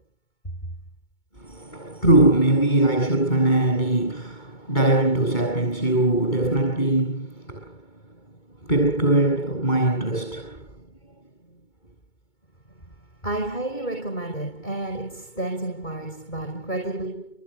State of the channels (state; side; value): late; right; 2.2 ms